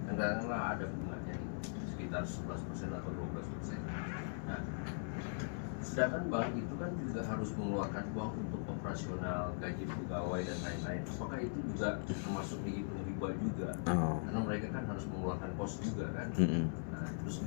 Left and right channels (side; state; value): right; silent; 51 dB below the other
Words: kadang-kadang ada bunganya nih, sekitar 11% atau 12%. Nah, sedangkan bank itu kan juga harus mengeluarkan uang untuk operasional, gaji pegawai dan lain-lain. Apakah itu juga termasuk dihitung riba juga? Karena mereka kan harus mengeluarkan kos juga kan. Nah, terus